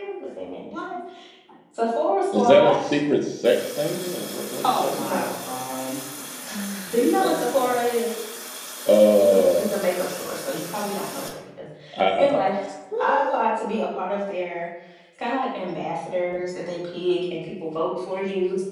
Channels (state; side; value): identical; both; correlation 1.00